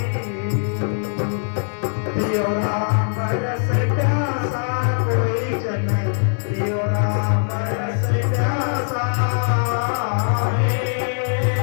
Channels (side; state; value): right; silent; digital silence